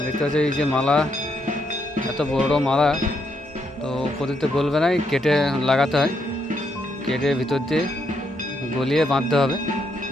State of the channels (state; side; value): normal; both; correlation 0.77